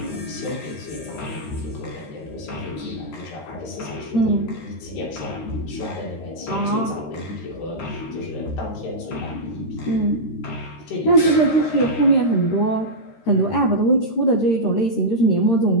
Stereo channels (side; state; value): right; late; 13 ms